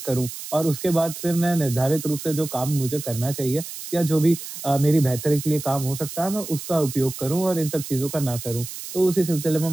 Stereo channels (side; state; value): right; noise; hiss, 10 dB below the sound